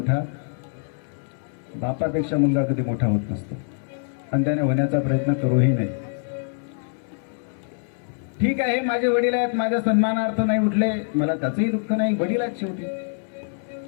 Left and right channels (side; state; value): right; silent; 62 dB below the other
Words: बापापेक्षा मुलगा कधी मोठा होत नसतो. आणि त्याने होण्याचा प्रयत्न करूही नाही. ठीक आहे माझे वडील आहेत, माझ्या सन्मानार्थ नाही उठले, मला त्याचंही दुःख नाही. वडील आहेत शेवटी.